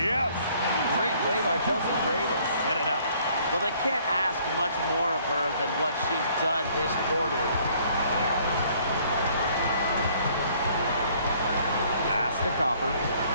Great play by Chelsea Gray to set it up. Well, they can't ask much more of her than what she's done this quarter. Pass to Copper.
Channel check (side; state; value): both; inverted; correlation -0.61